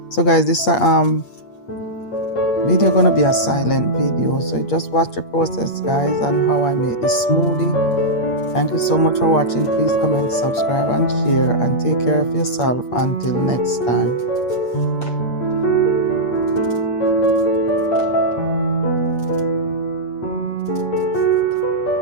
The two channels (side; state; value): right; late; 8.5 ms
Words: so guys, this video gonna be a silent video, so just watch the process guys and how I make this smoothie. Thank you so much for watching. Please comment, subscribe and share, and take care of yourself until next time.